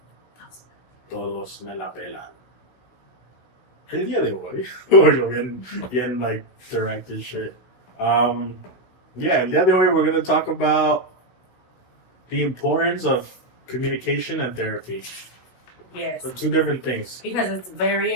Todos me la pelan. El día de hoy, bueno, bien like directed shit. Yeah, el día de hoy we're going to talk about the importance of communication and therapy. Yes. They're two different things. Because it's very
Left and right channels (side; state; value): right; late; 16 ms